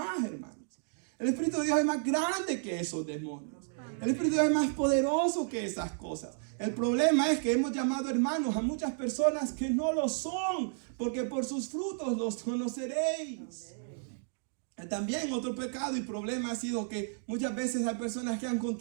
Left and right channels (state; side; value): silent; left; digital silence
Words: hermanos. El Espíritu de Dios es más grande que esos demonios. El Espíritu de Dios es más poderoso que esas cosas. El problema es que hemos llamado hermanos a muchas personas que no lo son, porque por sus frutos los conoceréis. También otro pecado y problema ha sido que muchas veces hay personas que han